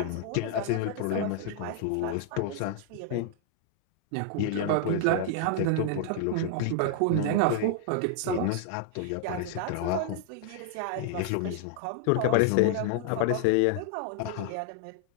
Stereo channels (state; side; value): different; both; correlation -0.01